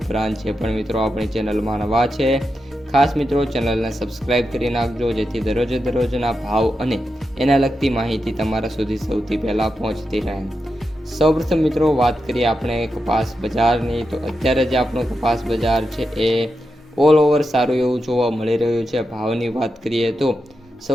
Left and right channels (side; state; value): both; normal; correlation 0.88